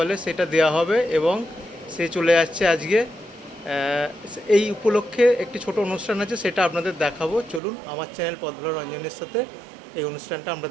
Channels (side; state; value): left; drops out; at 7.6 s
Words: সেটা দেওয়া হবে, এবং সে চলে যাচ্ছে আজকে। এই উপলক্ষে একটি ছোট অনুষ্ঠান আছে, সেটা আপনাদের দেখাবো। চলুন আমার চ্যানেল পথ ভোলা রঞ্জনের সাথে এই অনুষ্ঠানটা আমরা